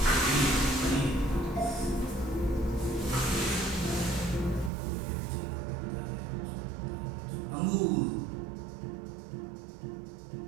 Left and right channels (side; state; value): left; drops out; at 4.7 s